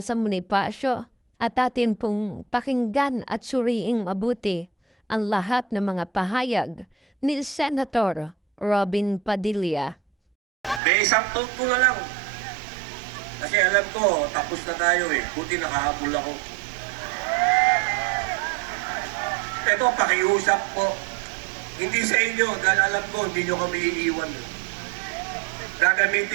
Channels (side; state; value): left; drops out; at 10.8 s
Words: Bonifacio at atin pong pakinggan at suriing mabuti ang lahat ng mga pahayag ni Senator Robin Padilla. May isang thought ko na lang. Kasi alam ko, tapos na tayo eh. Buti nakahabol ako. Ito, pakiusap po. Hindi sa inyo, dahil alam ko, hindi nyo kami iiwan.